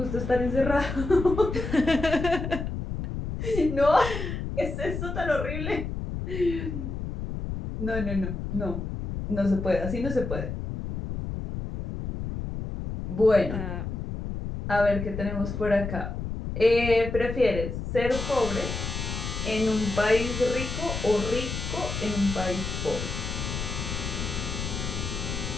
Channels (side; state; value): left; noise; rumble, 5 dB below the sound